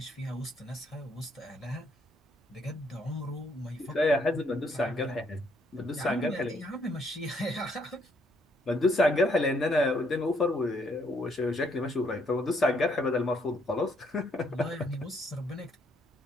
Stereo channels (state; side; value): normal; both; correlation 0.71